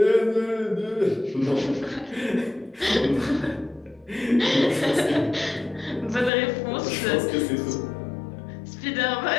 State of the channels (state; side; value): drops out; right; at 6.3 s